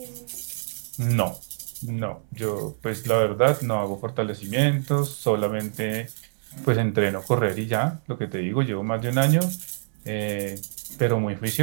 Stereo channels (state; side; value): silent; left; 61 dB below the other